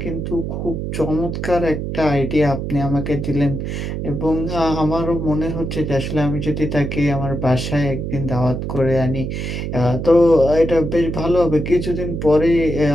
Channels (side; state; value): right; noise; hum, 4 dB below the sound